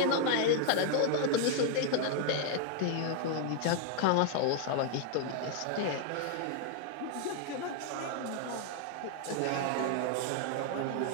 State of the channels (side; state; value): both; different; correlation 0.00